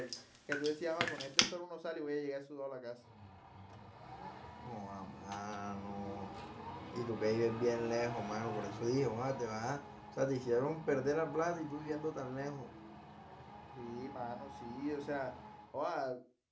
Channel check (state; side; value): identical; both; correlation 1.00